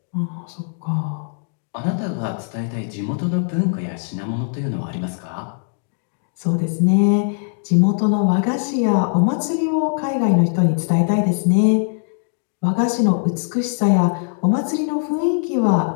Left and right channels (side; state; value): right; silent; 65 dB below the other